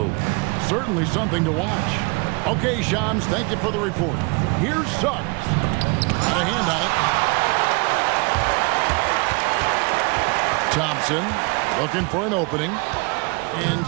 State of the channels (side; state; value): left; quieter; 29.1 dB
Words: Certainly something to watch. Okay, Shams, thank you for the report. Here's Suggs. Got a hand on it. Thompson looking for an opening. And